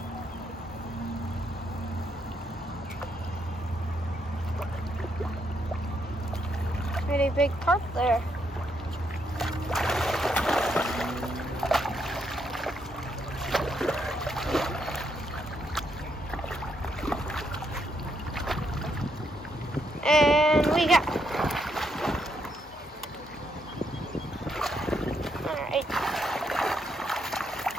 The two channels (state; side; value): normal; both; correlation 0.77